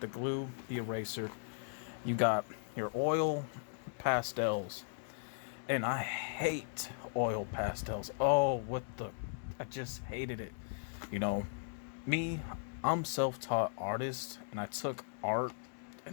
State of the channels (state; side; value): silent; right; digital silence